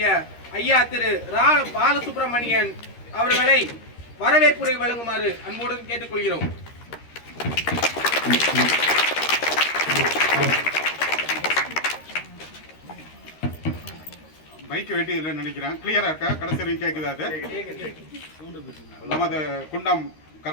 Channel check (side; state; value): right; late; 13 ms